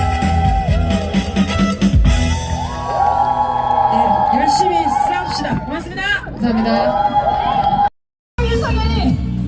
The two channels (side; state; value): both; identical; correlation 1.00